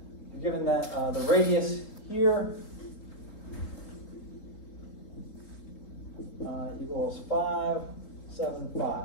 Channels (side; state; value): right; late; 3.8 ms